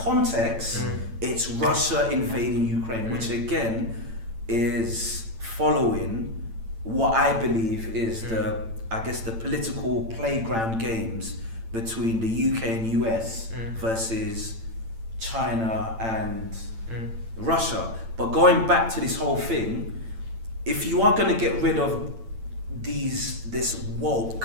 it's Russia invading Ukraine, which again is following what I believe is the political playground games between the UK and US versus China and Russia. But going back to this whole thing, if you are going to get rid of this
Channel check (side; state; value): left; late; 8.9 ms